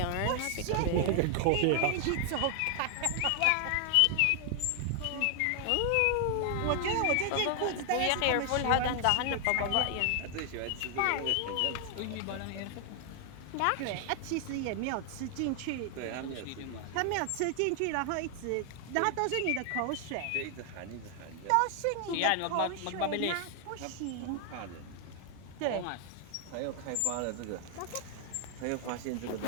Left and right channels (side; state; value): both; different; correlation 0.00